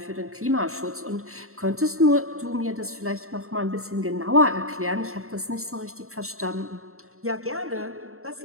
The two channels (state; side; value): late; left; 0.63 ms